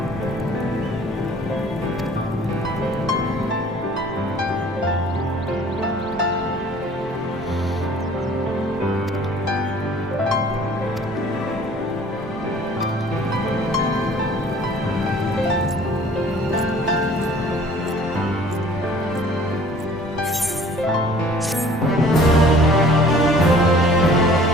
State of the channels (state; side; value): normal; both; correlation 0.51